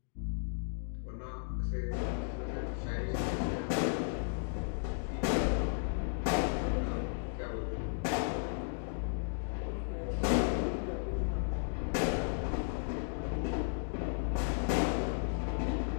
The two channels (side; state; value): right; silent; digital silence